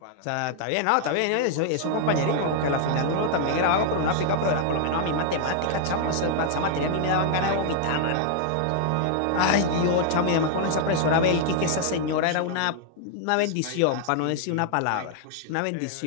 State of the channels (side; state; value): both; different; correlation 0.00